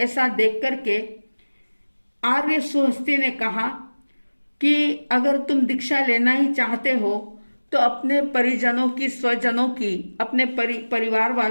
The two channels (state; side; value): inverted; both; correlation -1.00